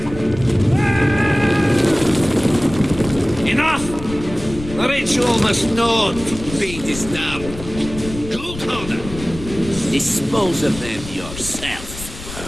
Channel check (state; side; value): noise; left; rumble, 12 dB below the sound